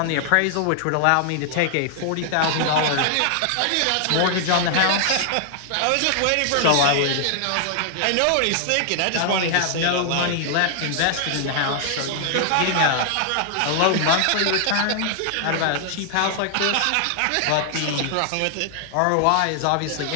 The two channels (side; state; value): both; different; correlation 0.00